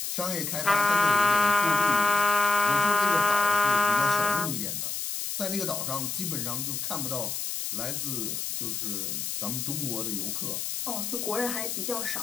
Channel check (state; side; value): noise; left; hiss, 3 dB below the sound